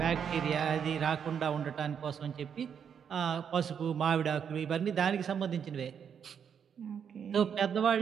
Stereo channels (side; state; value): left; quieter; 7.6 dB